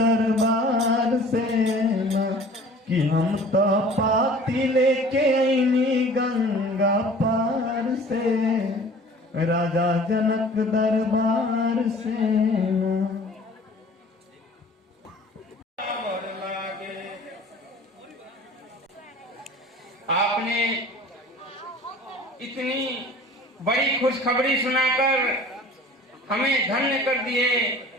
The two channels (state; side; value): normal; both; correlation 0.46